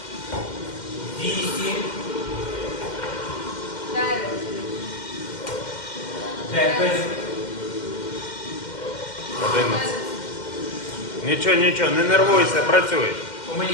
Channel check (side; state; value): right; late; 2.1 ms